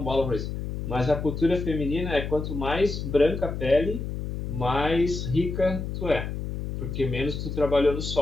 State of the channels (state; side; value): noise; left; hum, 5 dB below the sound